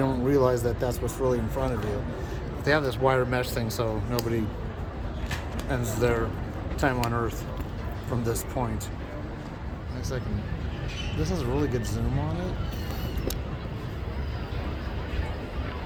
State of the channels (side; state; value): both; identical; correlation 1.00